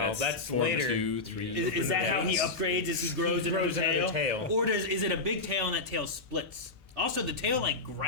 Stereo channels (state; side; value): quieter; right; 3.4 dB